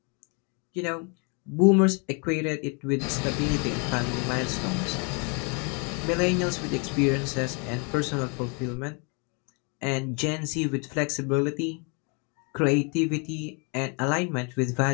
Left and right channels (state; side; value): quieter; right; 34.8 dB